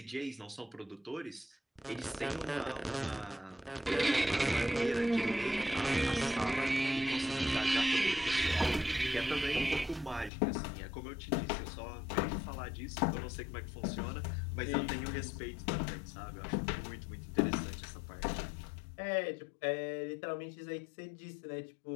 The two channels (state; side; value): drops out; right; at 10.3 s